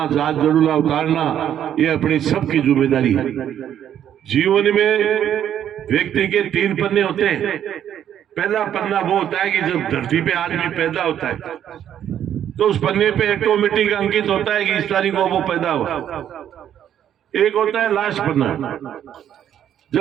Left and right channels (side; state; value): left; quieter; 10.1 dB